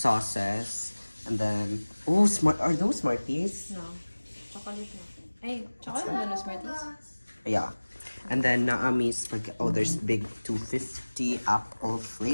and then smart. Are those Smarties? No. Chocolate na. Ay, chocolate na no Smarties? Yeah. And then Naami's there's big 250 apple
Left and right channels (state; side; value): inverted; both; correlation -1.00